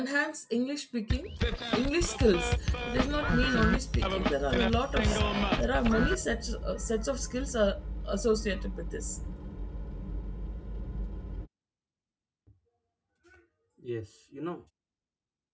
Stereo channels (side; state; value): both; identical; correlation 1.00